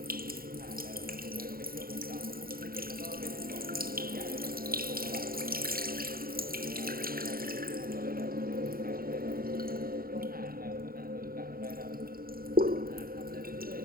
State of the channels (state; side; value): late; left; 0.43 ms